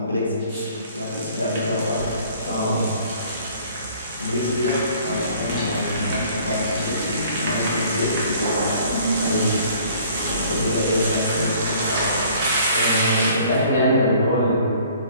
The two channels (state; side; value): inverted; both; correlation -0.55